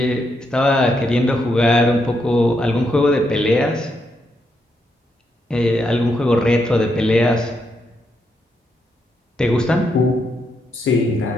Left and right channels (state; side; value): normal; both; correlation 0.80